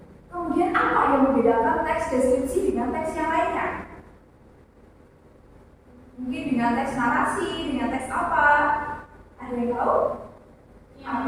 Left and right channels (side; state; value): both; identical; correlation 1.00